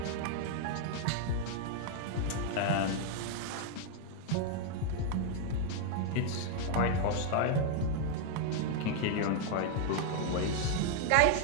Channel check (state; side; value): different; both; correlation 0.00